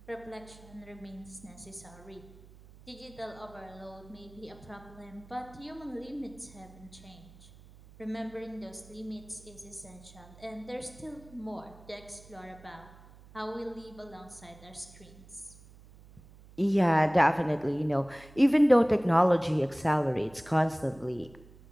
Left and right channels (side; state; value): right; noise; hum, 21 dB below the sound